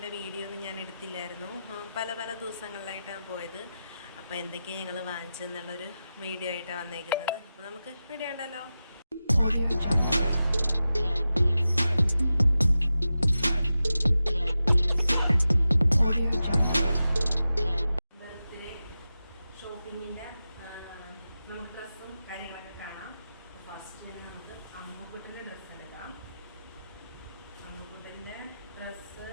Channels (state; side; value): inverted; both; correlation -0.92